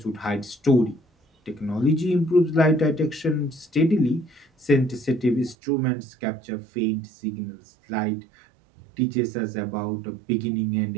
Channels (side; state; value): left; drops out; at 5.6 s